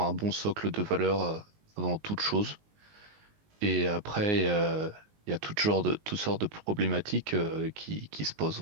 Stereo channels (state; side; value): late; left; 19 ms